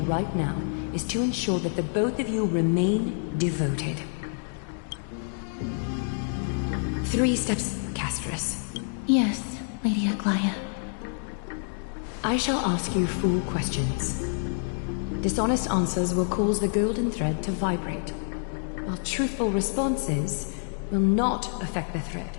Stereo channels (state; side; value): silent; right; 60 dB below the other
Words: right now is to ensure that the both of you remain devoted. 3 steps, Castris. Yes, Lady Aglaia. I shall ask you 4 questions. Dishonest answers will cause the golden thread to vibrate, while truthful responses will not affect the thread.